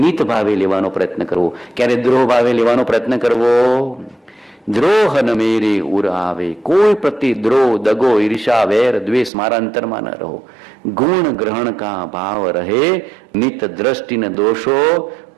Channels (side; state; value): left; drops out; at 9.3 s